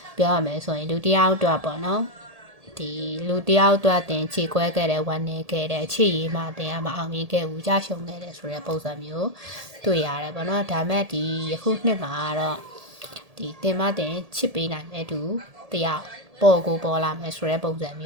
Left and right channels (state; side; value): late; left; 1.7 ms